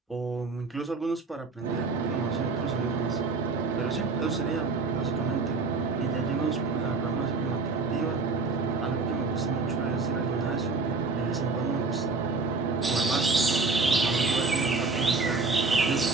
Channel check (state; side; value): quieter; left; 3.9 dB